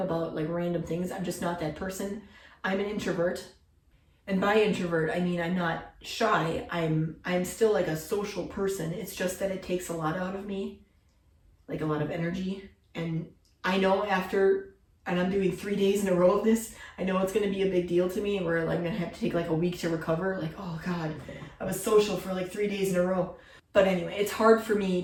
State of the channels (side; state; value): both; identical; correlation 1.00